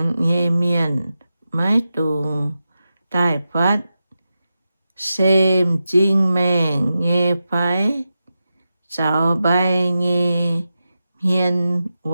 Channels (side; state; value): both; inverted; correlation -0.91